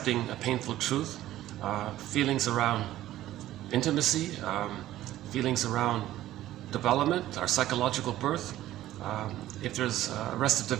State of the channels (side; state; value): left; quieter; 14.2 dB